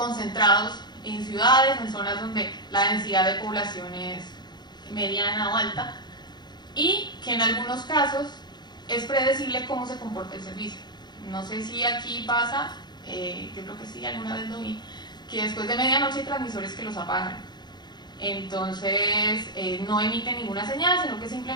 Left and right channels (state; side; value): late; right; 0.21 ms